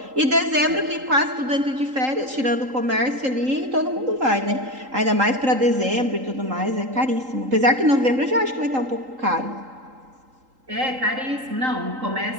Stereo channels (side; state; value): left; late; 3.8 ms